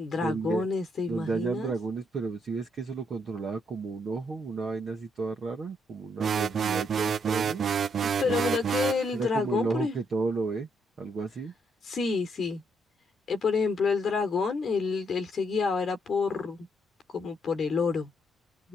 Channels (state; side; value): normal; both; correlation 0.74